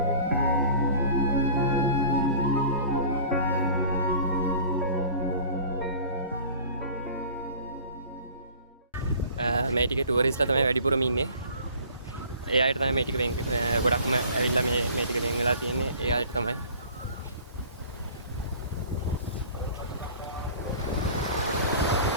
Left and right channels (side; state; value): both; inverted; correlation -0.45